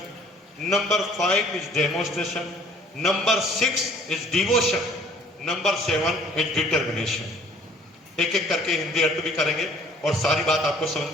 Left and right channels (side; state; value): both; normal; correlation 0.55